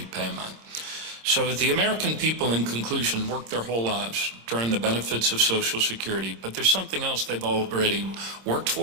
So the American people, in conclusion, work their whole lives to earn the benefits of Social Security, but there's something else they've already worked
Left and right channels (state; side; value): late; left; 26 ms